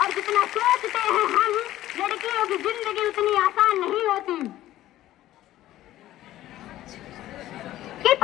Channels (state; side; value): quieter; right; 14.3 dB